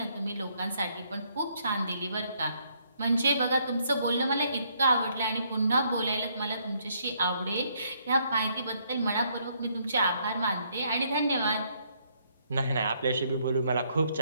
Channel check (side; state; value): both; inverted; correlation -0.70